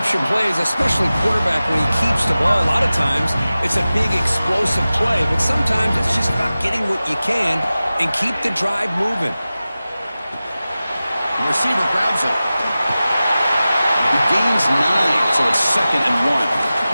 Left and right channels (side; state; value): both; inverted; correlation -0.96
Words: plays, especially quarterback when he keeps the ball. A lot of times, it's a big explosive play, but sometimes it's just about getting what you can and keep the drive moving. The receiver grabs it. He gains 9, so it's 2nd and